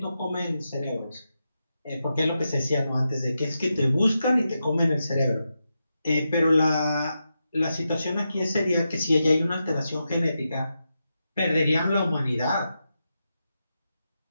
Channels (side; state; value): both; inverted; correlation -0.88